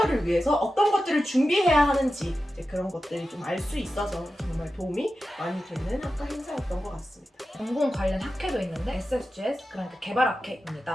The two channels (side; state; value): both; normal; correlation 0.92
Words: 위해서 어떤 것들을 준비해야 하는지 이제 그런 것들이 좀 알 수 있어서 정말 도움이 많이 되는 학과 행사였던 것 같습니다. 전공 관련 학회도 있는데 SFGS, 그러니까 개발학회입니다.